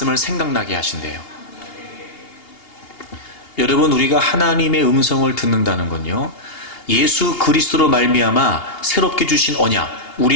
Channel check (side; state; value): right; late; 2.8 ms